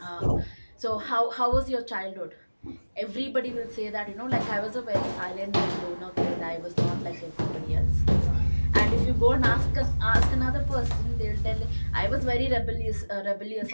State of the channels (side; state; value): both; inverted; correlation -1.00